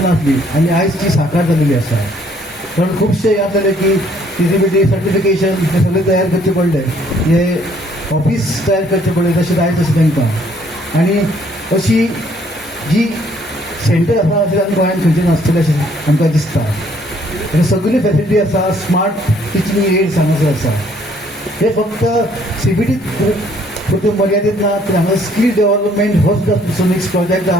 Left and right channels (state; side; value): normal; both; correlation 0.63